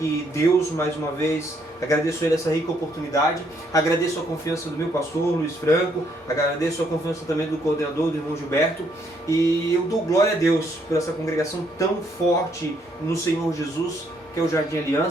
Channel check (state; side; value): normal; both; correlation 0.71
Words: Deus mais uma vez, agradeço a Ele essa rica oportunidade, agradeço a confiança do meu pastor Luiz Franco, agradeço a confiança também do coordenador, do irmão Gilberto, e eu dou glória a Deus por essa congregação tão forte no Senhor Jesus, que é o Jardim